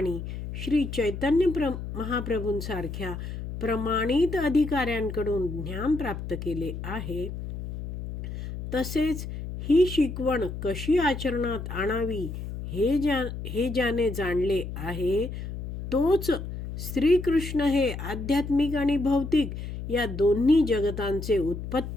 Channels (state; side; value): noise; left; hum, 7 dB below the sound